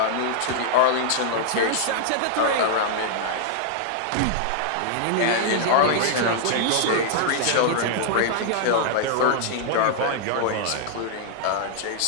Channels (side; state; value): both; different; correlation -0.01